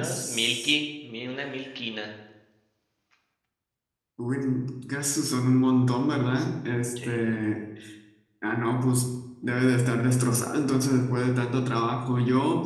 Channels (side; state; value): both; identical; correlation 1.00